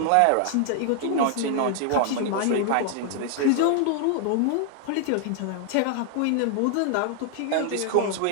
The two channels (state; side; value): different; both; correlation 0.00